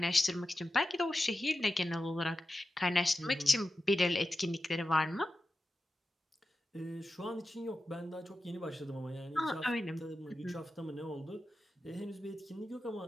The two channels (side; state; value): both; normal; correlation 0.92